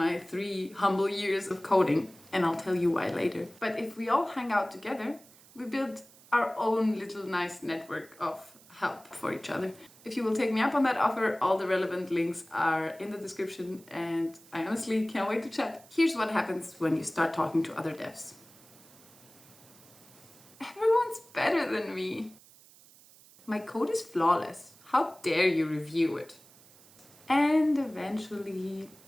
3 humble years of coding, and I'll tell you why later. But if we all hang out together, we build our own little nice network of help for each other. If you will take me up on that offer, all the relevant links are in the description, and I honestly can't wait to chat. Here's what happens when you start talking to other devs. Everyone's better than me. My code is flawless. How dare you review it? And eventually...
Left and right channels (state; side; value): noise; right; hiss, 24 dB below the sound